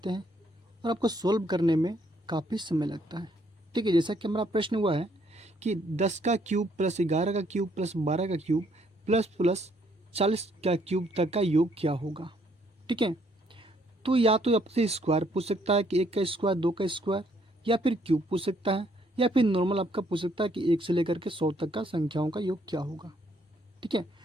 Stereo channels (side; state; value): both; normal; correlation 0.68